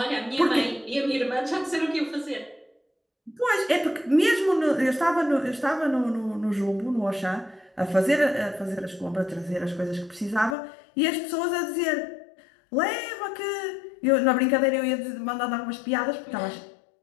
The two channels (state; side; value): drops out; right; at 10.6 s